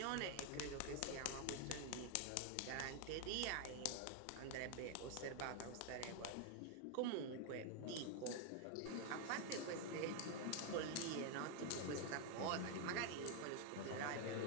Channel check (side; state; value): both; different; correlation 0.01